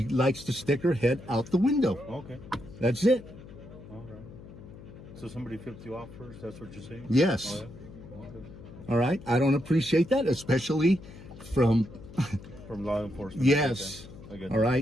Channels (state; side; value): noise; left; hum, 17 dB below the sound